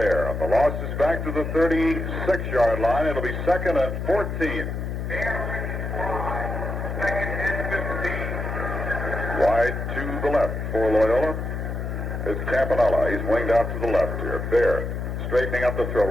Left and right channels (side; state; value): left; noise; hum, 4 dB below the sound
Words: The loss is back to the 36-yard line. It'll be second and 14. Wide to the left for Loyola is Campanella. He's winged out to the left here. Bear straightening up the throw.